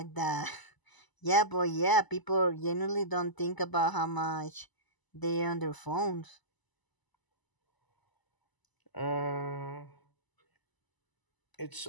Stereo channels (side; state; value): right; late; 1.0 ms